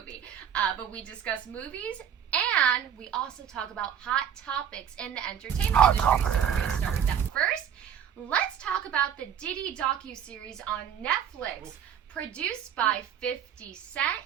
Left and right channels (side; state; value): left; quieter; 8.8 dB